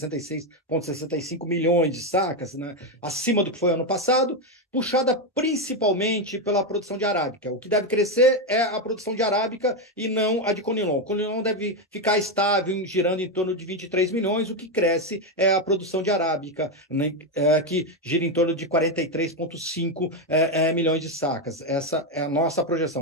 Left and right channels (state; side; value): normal; both; correlation 0.07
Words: milhões de sacas, né? Acima do que foi ano passado, puxada principalmente pela produção de arábica. O que deve crescer é a produção de arábica e não a de conilon. O conilon deve ficar estável, girando em torno de 23 milhões, o que cresce é a produção de arábica, né, que gira em torno de 43,5 milhões de sacas. Essa é a nossa